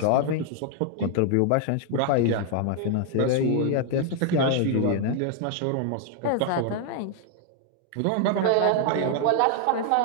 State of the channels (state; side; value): different; both; correlation 0.00